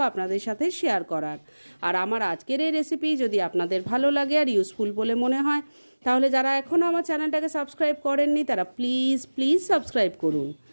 আপনাদের সাথে শেয়ার করার। আর আমার আজকের এই রেসিপি যদি আপনাদের ভালো লাগে আর ইউজফুল বলে মনে হয়, তাহলে যারা এখনও আমার চ্যানেলটাকে সাবস্ক্রাইব করেননি তারা প্লিজ সাবস্ক্রাইব করুন।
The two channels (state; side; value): inverted; both; correlation -1.00